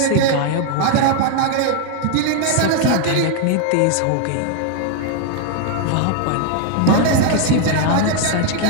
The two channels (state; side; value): different; both; correlation 0.00